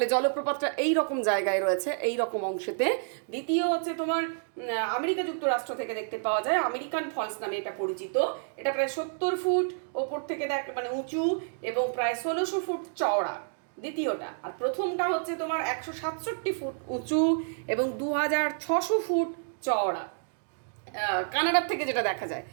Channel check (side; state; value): left; silent; digital silence